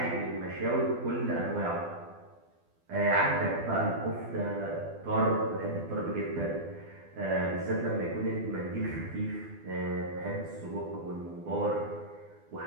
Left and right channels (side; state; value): left; late; 12 ms